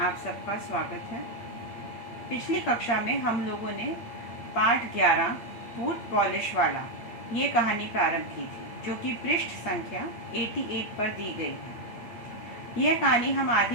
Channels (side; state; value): right; late; 8.8 ms